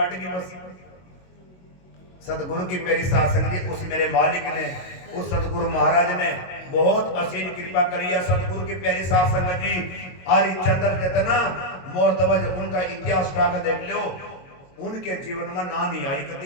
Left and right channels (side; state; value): right; late; 22 ms